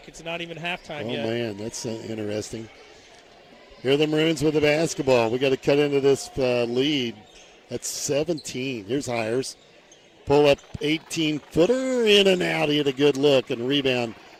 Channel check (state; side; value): identical; both; correlation 1.00